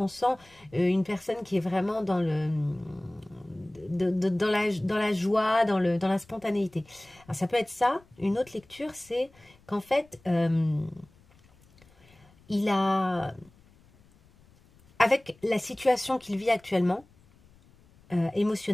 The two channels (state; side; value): noise; left; rumble, 29 dB below the sound